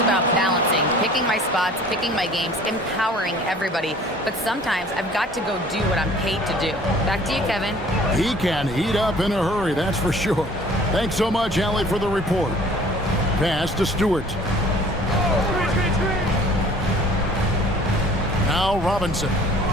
about balancing, picking my spots, picking my games, empowering everybody. But sometimes I've got to go do what I'm paid to do." Back to you, Kevin. He can heat up in a hurry, that's for sure. Thanks so much, Allie, for the report. Pass to Stewart. Now Robinson.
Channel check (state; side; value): normal; both; correlation 0.50